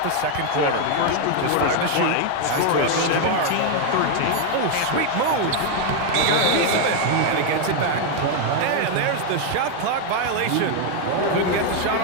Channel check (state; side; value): different; both; correlation 0.01